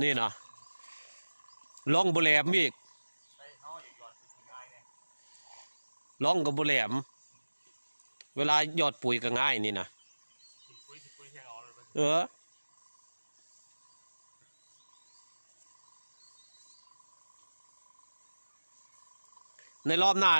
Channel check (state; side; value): inverted; both; correlation -1.00